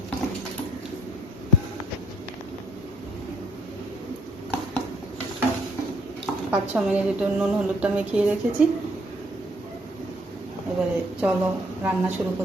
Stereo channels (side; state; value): both; normal; correlation 0.67